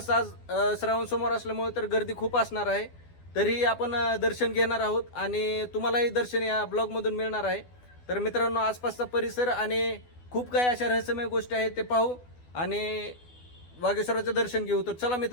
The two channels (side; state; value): right; late; 12 ms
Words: आज श्रावण सोमवार असल्यामुळे तर गर्दी खूप असणार आहे. तरी आपण दर्शन घेणार आहोत आणि तुम्हालाही दर्शन या ब्लॉगमधून मिळणार आहे. तर मित्रांनो, आसपासचा परिसर आणि खूप काही अशा रहस्यमय गोष्टी आहेत ते पाहू आणि वागेश्वराचं दर्शन घेऊ. तर चला